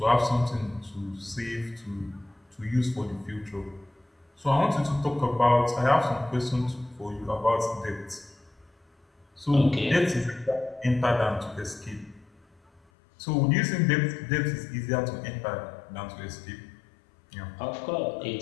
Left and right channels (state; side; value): drops out; right; at 12.8 s